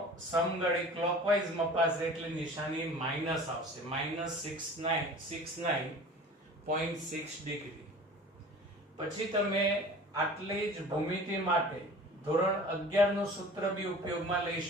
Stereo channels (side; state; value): both; normal; correlation 0.42